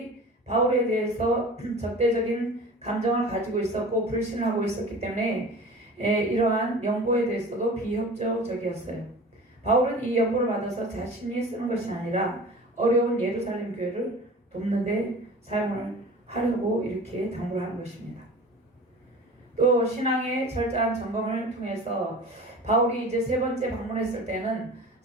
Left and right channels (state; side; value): normal; both; correlation 0.39